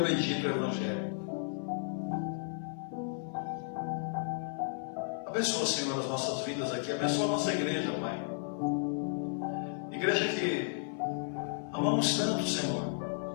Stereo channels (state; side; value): silent; right; 55 dB below the other